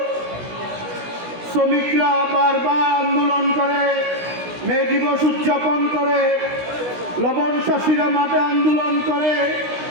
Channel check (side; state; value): left; late; 16 ms